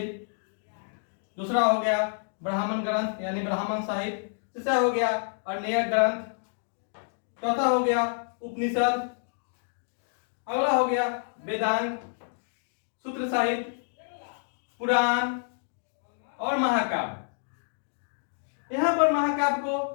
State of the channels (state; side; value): silent; right; digital silence